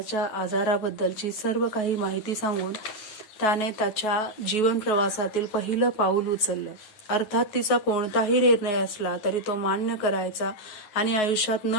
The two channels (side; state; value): right; late; 9.4 ms